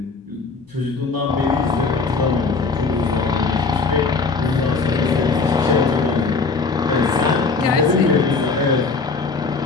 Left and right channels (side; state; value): right; quieter; 4.3 dB